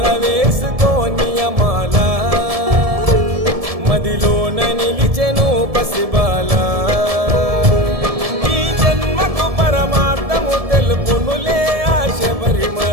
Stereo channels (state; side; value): late; left; 1.7 ms